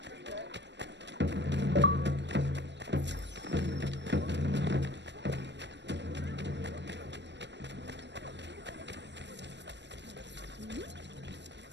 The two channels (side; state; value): left; late; 0.51 ms